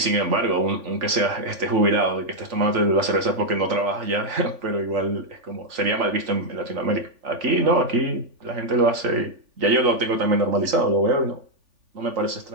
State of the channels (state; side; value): late; left; 3.5 ms